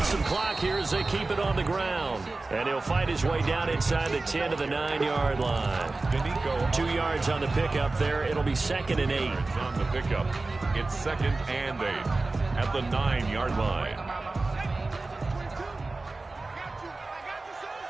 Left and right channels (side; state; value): left; quieter; 3.4 dB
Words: some clock here as they keep it on the ground. And he'll fight his way down inside the 10 to the 9-yard line. 2 yards on the pickup there. It'll be 2nd and 8. On the pickup, it's 2nd and 8 at the 9-yard line.